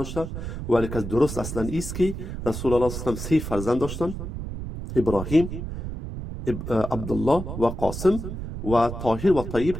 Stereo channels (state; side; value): noise; right; rumble, 7 dB below the sound